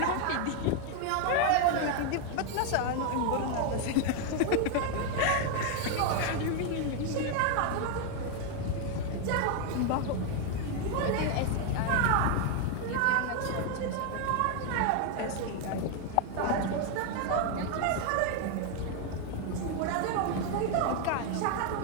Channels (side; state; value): both; different; correlation 0.01